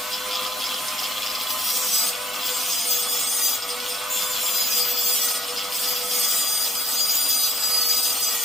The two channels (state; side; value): normal; both; correlation 0.59